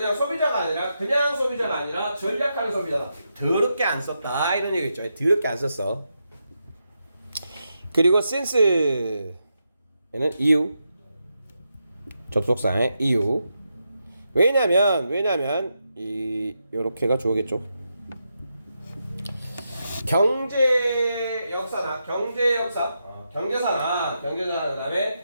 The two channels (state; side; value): inverted; both; correlation -0.85